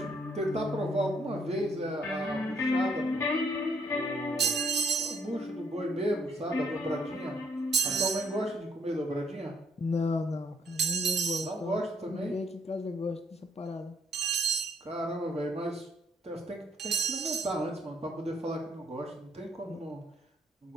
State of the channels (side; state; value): both; normal; correlation 0.68